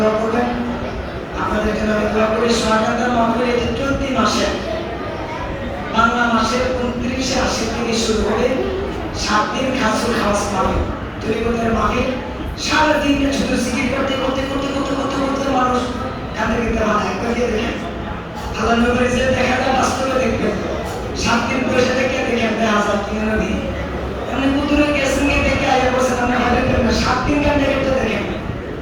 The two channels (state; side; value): identical; both; correlation 1.00